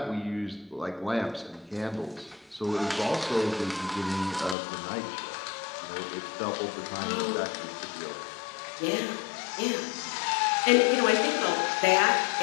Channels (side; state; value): right; drops out; at 4.5 s